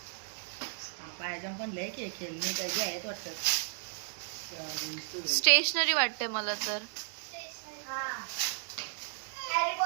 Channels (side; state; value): left; silent; digital silence